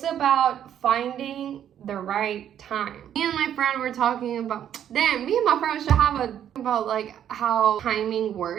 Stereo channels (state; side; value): quieter; left; 10.0 dB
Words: about finding the right time. Me and my friend were talking about, me and my friend should have about like how timing